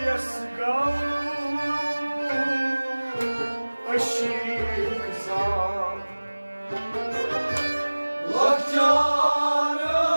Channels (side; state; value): both; inverted; correlation -1.00